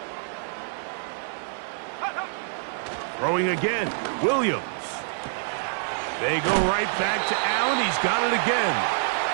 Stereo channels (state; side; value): silent; left; 56 dB below the other